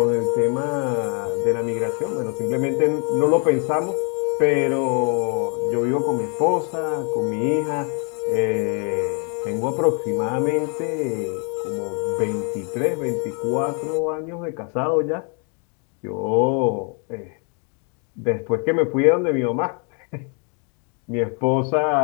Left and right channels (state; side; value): quieter; right; 38.0 dB